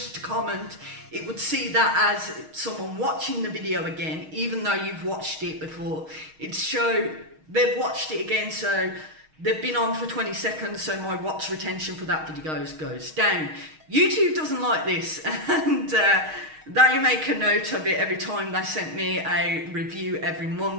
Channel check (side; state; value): left; late; 6.4 ms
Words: to comment. It would see that as someone watching the video again, even though you've watched it before. It'd show they've watched it again, so they've been on for 20 seconds, so my watch retention for that video goes down. YouTube doesn't like this, and they make a note of it every time they send me a review every